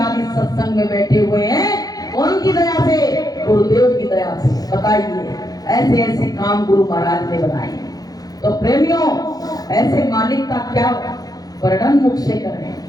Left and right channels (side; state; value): right; late; 0.18 ms